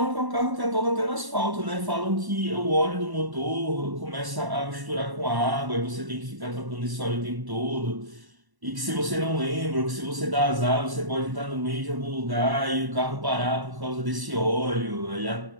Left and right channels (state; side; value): late; left; 1.1 ms